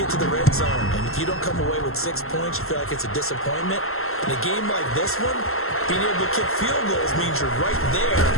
get to the red zone, and if you don't come away with 6 points, you feel like it's a disappointment. In a game like this one, being able to kick field goals means you're right there,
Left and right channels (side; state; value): right; late; 0.62 ms